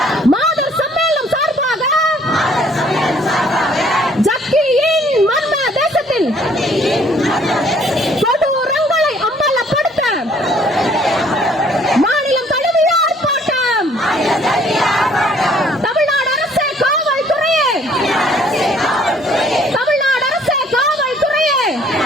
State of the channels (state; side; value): normal; both; correlation 0.60